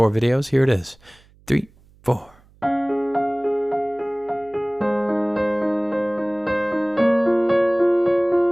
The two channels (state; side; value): noise; right; hum, 29 dB below the sound